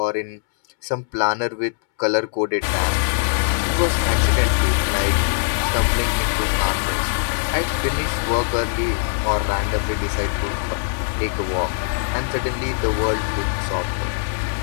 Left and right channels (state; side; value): silent; right; 65 dB below the other